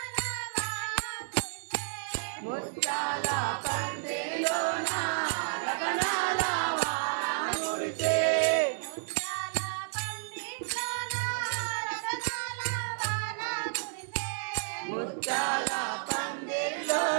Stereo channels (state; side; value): silent; left; digital silence